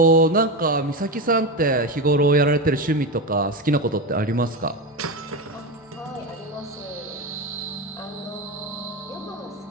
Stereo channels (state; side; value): normal; both; correlation 0.18